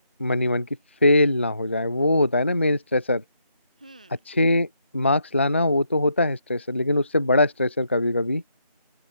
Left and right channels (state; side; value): inverted; both; correlation -0.77